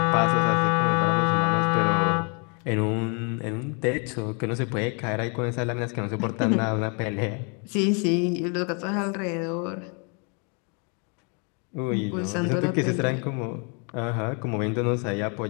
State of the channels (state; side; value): quieter; right; 36.0 dB